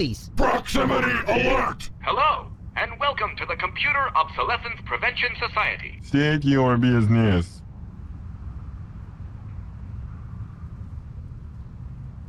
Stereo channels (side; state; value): both; identical; correlation 1.00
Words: Proximity alert! Hello, and welcome to the Computer Obsolescence Prevention Society. State your business.